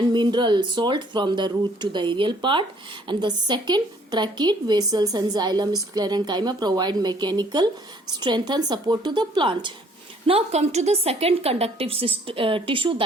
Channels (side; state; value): both; normal; correlation 0.61